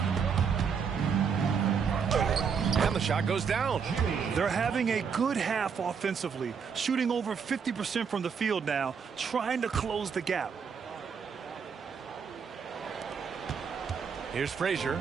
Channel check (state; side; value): quieter; left; 6.4 dB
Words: And the shot goes down. They're having a good half offensively, shooting over 50% from the field now, trying to close the gap. Here's